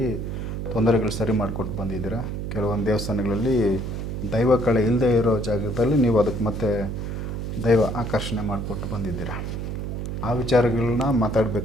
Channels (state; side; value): noise; right; hum, 4 dB below the sound